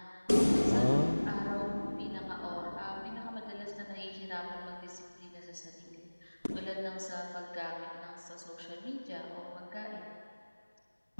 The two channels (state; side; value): inverted; both; correlation -1.00